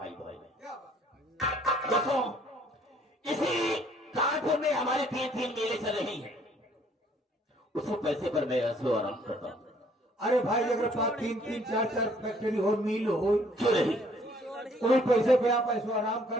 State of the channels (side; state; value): both; normal; correlation 0.61